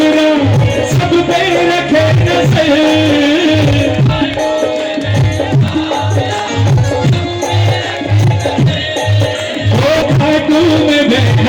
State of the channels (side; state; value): both; identical; correlation 1.00